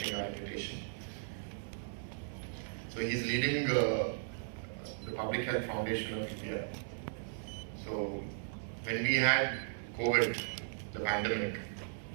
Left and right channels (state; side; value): silent; left; 53 dB below the other